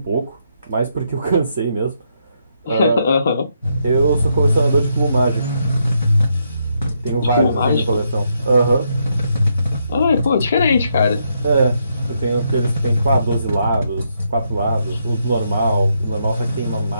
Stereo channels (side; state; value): both; inverted; correlation -0.78